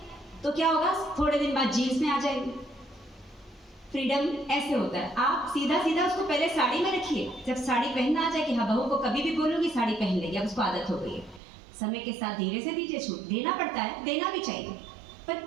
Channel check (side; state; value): left; drops out; at 11.4 s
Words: तो क्या होगा, थोड़े दिन बाद जीन्स में आ जाएंगे। फ्रीडम ऐसे होता है, आप सीधा सीधा उसको पहले साड़ी में रखिए, जब साड़ी पहनना आ जाए कि हाँ बहू को कभी भी बोलूंगी साड़ी पहन लेगी, अब उसको आदत हो गई है। समय के साथ धीरे से दीजिए छूट, देना पड़ता है, देना भी चाहिए, पर